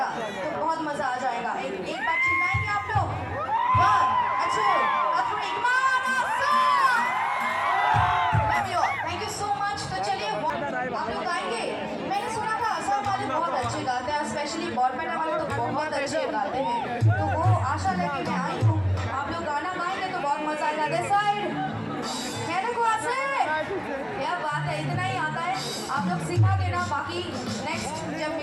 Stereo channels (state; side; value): identical; both; correlation 1.00